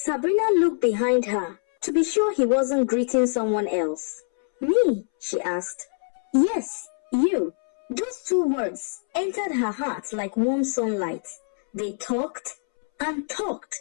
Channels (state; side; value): silent; right; 62 dB below the other